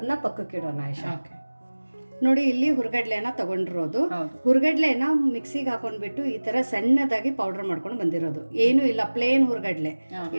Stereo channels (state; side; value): inverted; both; correlation -1.00